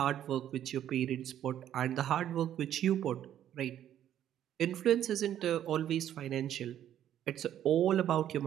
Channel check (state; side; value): quieter; left; 11.0 dB